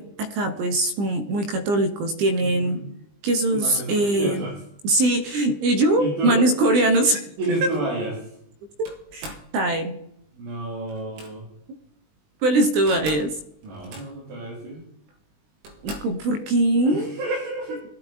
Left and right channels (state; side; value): late; left; 20 ms